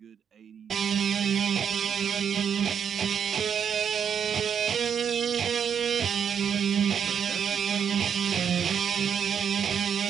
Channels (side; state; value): left; quieter; 7.8 dB